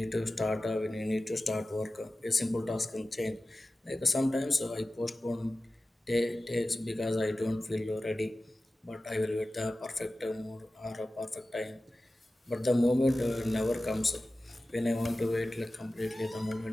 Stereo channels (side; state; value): both; normal; correlation 0.95